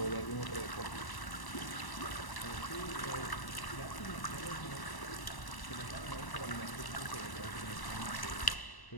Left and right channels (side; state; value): right; late; 1.0 ms